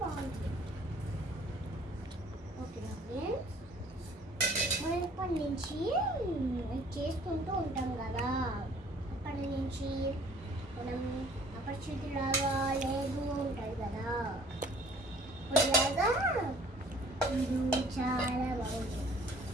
బాగుంటుంది. ఓకేనా ఫ్రెండ్స్, మనం ఇప్పటి నుంచి చేసుకుంటూ ఉంటాం కదా. అప్పటి నుంచి మనం అపరిచితులాగా లేదు ఉంటుంది కదా. ఇలాగా ఇది చాలా బాగుంటుంది.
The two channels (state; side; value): normal; both; correlation 0.55